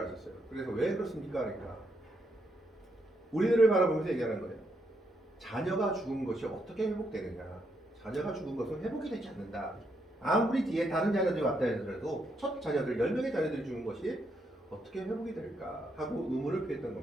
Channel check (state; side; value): normal; both; correlation 0.78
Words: 하셨어요. 그래서 왜 그렇습니까? 그러니까 우리들을 바라보면서 얘기하는 거예요. 자녀가 죽은 것이 어떻게 회복되느냐. 자녀가 죽은 것은 회복이 되지 않는다. 아무리 뒤에 다른 자녀들이 왔다 하더라도 첫 자녀들 10명의 자녀들이 죽은 것이 어떻게 회복이 될까 하고 의문을 표했던